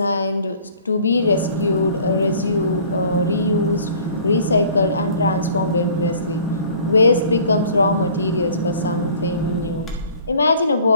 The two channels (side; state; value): both; inverted; correlation -0.51